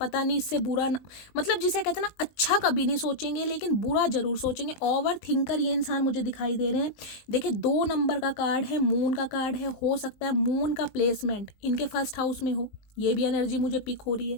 पता नहीं इससे बुरा न, मतलब जिसे कहते हैं ना, अच्छा कभी नहीं सोचेंगे लेकिन बुरा जरूर सोचेंगे। ओवर थिंकर ये इंसान मुझे दिखाई दे रहे हैं। देखिए 2 नंबर का कार्ड है, मून का कार्ड है, हो सकता है मून का प्लेसमेंट इनके फर्स्ट हाउस में हो, ये भी एनर्जी मुझे पिक हो रही है।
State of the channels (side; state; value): right; late; 20 ms